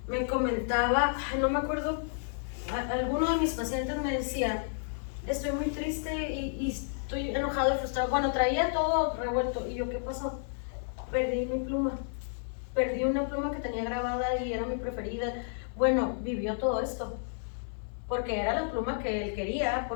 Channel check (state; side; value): silent; right; 57 dB below the other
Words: Me comentaba, no me acuerdo, alguno de mis pacientes me decía, estoy muy triste y estoy enojado y frustrado. Bueno, traía todo revuelto. ¿Y yo qué pasó? Perdí mi pluma. Perdí una pluma que tenía grabada y era mi preferida. Bueno, vivió todo esto. Porque era la pluma que él quería,